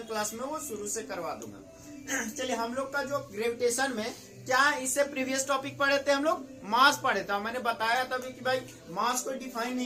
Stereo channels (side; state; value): both; identical; correlation 1.00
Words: क्लास में वो शुरू से करवा दूंगा। चलिए, हम लोग का जो ग्रेविटेशन में क्या इससे प्रीवियस टॉपिक पढ़े थे, हम लोग मास पढ़े थे। मैंने बताया तभी कि भाई मास को डिफाइन